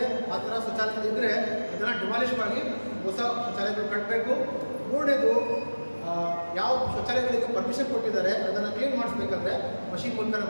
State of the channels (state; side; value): inverted; both; correlation -1.00